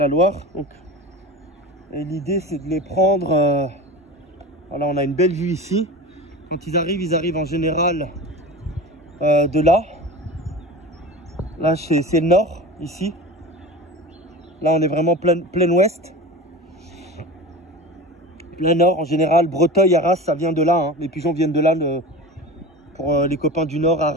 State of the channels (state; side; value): normal; both; correlation 0.31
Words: Loire. Donc, et l'idée c'est de les prendre. Voilà, on a une belle vue ici. Quand ils arrivent en général de là. Là c'est le nord ici. Là on est vraiment plein ouest. Plein nord en général. Breteuil, Arras, ça vient de là. Hein. Les pigeons viennent de là. Pour les copains du nord,